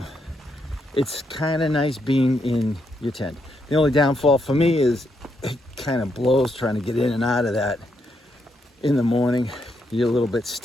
it's kind of nice being in your tent. The only downfall for me is it kind of blows trying to get in and out of that in the morning. You're a little bit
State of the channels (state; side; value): normal; both; correlation 0.79